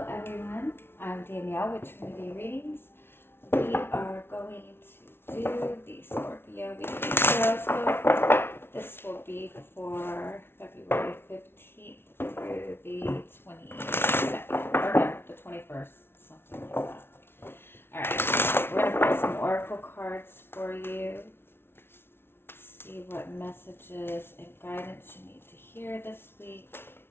everyone, I'm Danielle with Trinity Readings. We are going to do the Scorpio Weekly Tarotscope. This will be for February 15th through the 22nd, or no, the 21st, something like that. Alright, we're going to pull some oracle cards for you. See what messages and guidance you need to hear this week.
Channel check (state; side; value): late; right; 0.11 ms